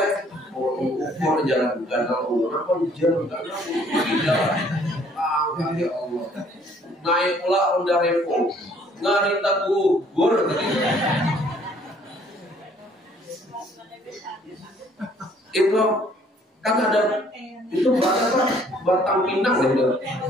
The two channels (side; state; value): both; normal; correlation 0.60